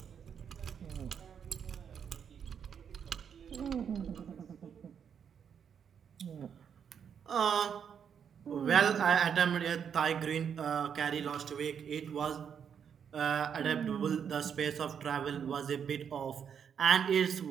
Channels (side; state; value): left; quieter; 7.7 dB